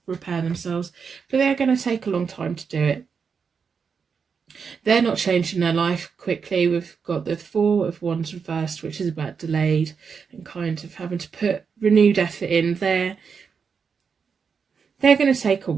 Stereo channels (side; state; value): left; quieter; 6.0 dB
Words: repair themselves. But they're going to take a long time to do it. They're not changing their life quickly. We've got the Four of Wands reversed, which is about delayed and kind of having to put renewed effort in. They're going to take a